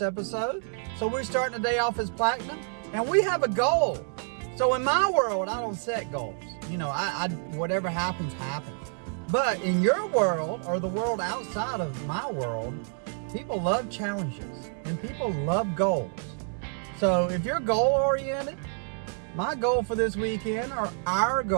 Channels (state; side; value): silent; left; 56 dB below the other